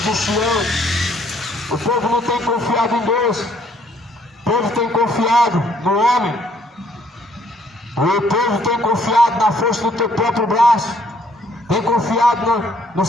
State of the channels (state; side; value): normal; both; correlation 0.65